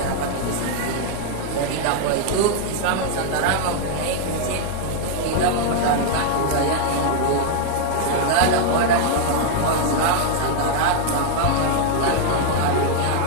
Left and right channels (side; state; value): both; different; correlation 0.00